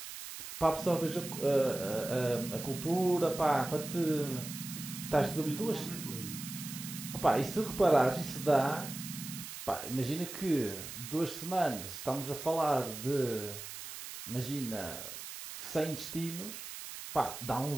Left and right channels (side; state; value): right; noise; hiss, 10 dB below the sound